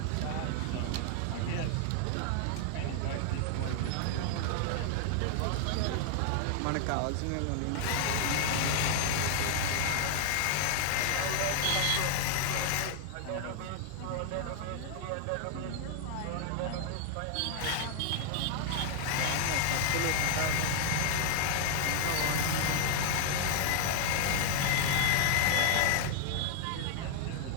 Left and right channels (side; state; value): both; different; correlation 0.00